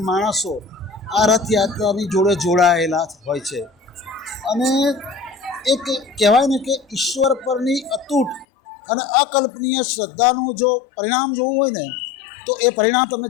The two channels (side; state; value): right; drops out; at 8.5 s